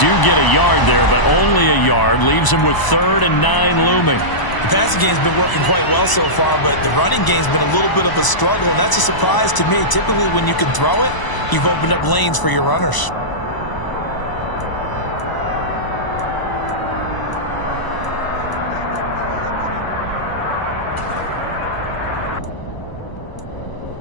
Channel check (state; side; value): late; right; 1.0 ms